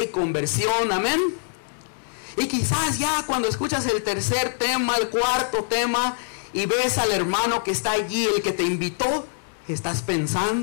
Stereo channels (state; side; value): silent; right; 63 dB below the other